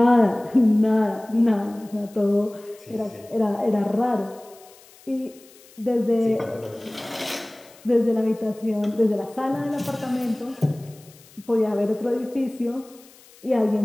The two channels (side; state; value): left; noise; hiss, 25 dB below the sound